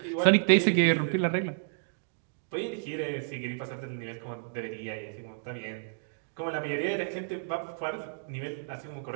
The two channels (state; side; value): silent; left; digital silence